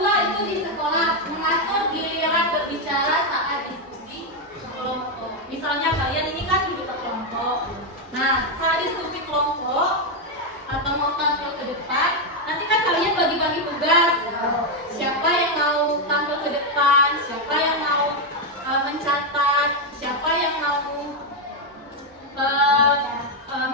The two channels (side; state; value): both; normal; correlation 0.04